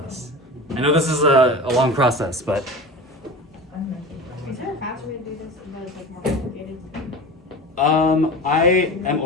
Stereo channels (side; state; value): both; normal; correlation 0.32